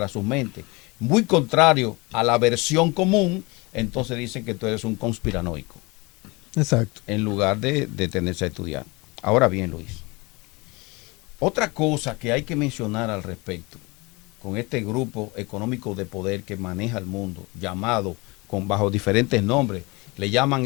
sus mentes, muy contrario a la versión común, entonces dicen que tú eres un conspiranoico. Exacto. En lugar de detenerse a estudiar. Ahora bien, Luis, otra cosa que hay que mencionar al respecto, con este grupo económico de poder que maneja el mundo, llamado bajo diferentes nombres, le llaman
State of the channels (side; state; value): right; quieter; 25.8 dB